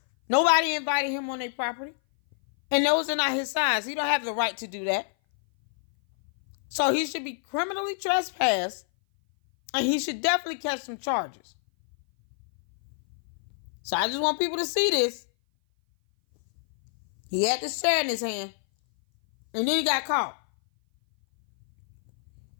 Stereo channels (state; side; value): silent; right; 57 dB below the other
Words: Nobody invited him on their property. And those are not his signs. He don't have the right to do that. So he should be criminally trespassed. And he should definitely catch some charges. So I just want people to see this. He had this chair in his hand. And then he got caught.